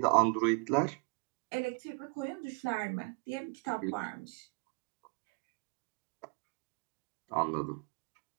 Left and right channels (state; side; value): quieter; left; 32.3 dB